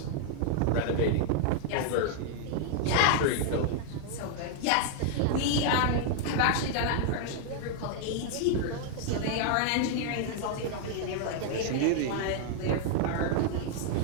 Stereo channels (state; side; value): different; both; correlation 0.00